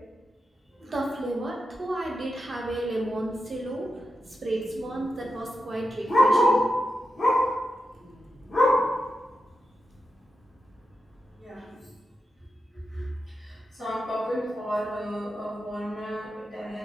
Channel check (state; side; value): normal; both; correlation 0.89